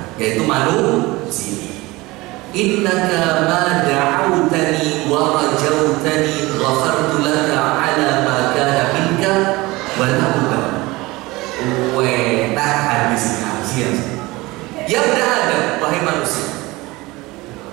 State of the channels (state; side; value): quieter; left; 21.3 dB